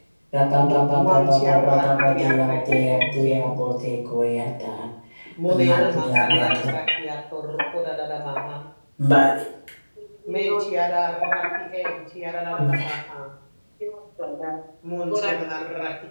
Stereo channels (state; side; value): inverted; both; correlation -1.00